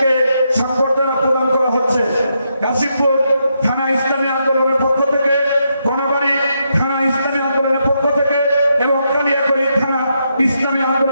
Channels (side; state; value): both; inverted; correlation -0.81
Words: সংবর্ধনা প্রদান করা হচ্ছে। কাশিমপুর থানা ইসলামী আন্দোলনের পক্ষ থেকে, কোনাবাড়ি থানা ইসলামী আন্দোলনের পক্ষ থেকে এবং কালিয়াকৈর থানা ইসলামী